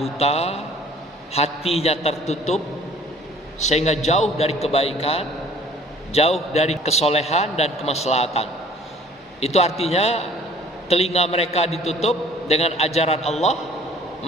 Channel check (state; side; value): normal; both; correlation 0.52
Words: hatinya tertutup, sehingga jauh dari kebaikan, jauh dari kesolehan dan kemaslahatan, itu artinya telinga mereka ditutup dengan ajaran Allah,